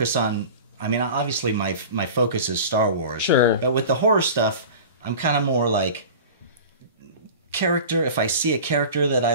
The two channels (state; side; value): inverted; both; correlation -0.36